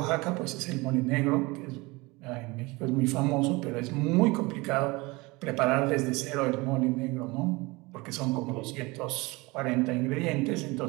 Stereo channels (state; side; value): quieter; left; 23.8 dB